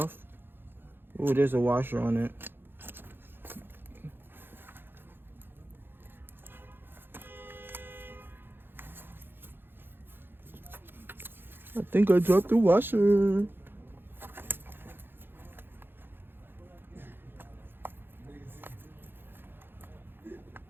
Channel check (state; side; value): late; left; 0.10 ms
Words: Oh, there's a washer on it. I think I dropped the washer.